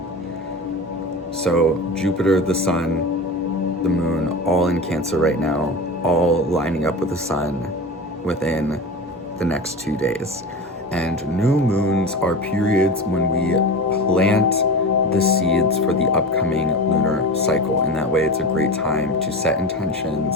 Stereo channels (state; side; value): normal; both; correlation 0.28